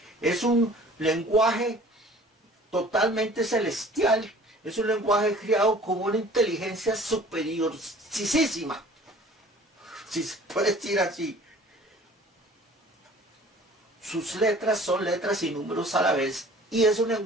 es un lenguaje totalmente celestial, es un lenguaje creado con una inteligencia superiorcísima, si se puede decir así. Sus letras son letras y números a la vez, y es un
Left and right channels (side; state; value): both; normal; correlation 0.49